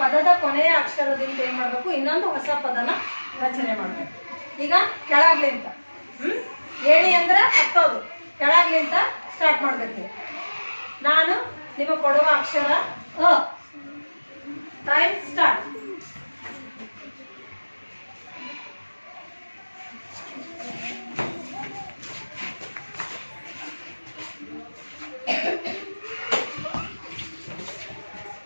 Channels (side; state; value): both; inverted; correlation -1.00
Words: ಪದದ ಕೊನೆಯ ಅಕ್ಷರದಿಂದ ಏನು ಮಾಡಬೇಕು, ಇನ್ನೊಂದು ಹೊಸ ಪದನ ರಚನೆ ಮಾಡಬೇಕು. ಈಗ ಕೆಳಗ್ಲಿಂತ ಏಣಿ ಅಂದ್ರೆ ಹತ್ತೋದು, ಕೆಳಗ್ಲಿಂತ ಸ್ಟಾರ್ಟ್ ಮಾಡಬೇಕು. ನಾನು ನಿಮಗೆ ಕೊಡುವ ಅಕ್ಷರ ಅ. Time start.